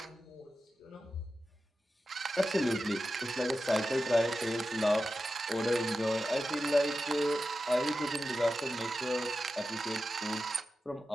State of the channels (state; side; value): normal; both; correlation 0.92